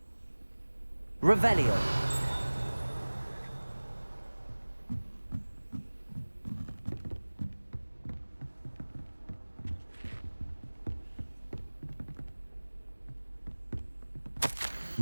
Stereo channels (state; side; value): inverted; both; correlation -1.00